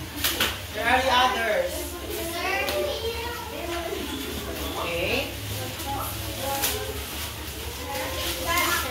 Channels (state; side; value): identical; both; correlation 1.00